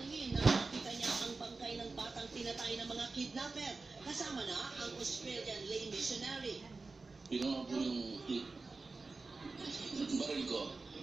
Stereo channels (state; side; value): quieter; left; 3.8 dB